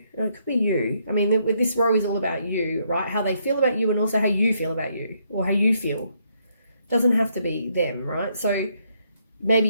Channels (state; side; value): inverted; both; correlation -0.73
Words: It could be you. I mean, with this row is all about you, right? How they feel about you and also how you feel about you or how you feel. It doesn't have to be them, right? So maybe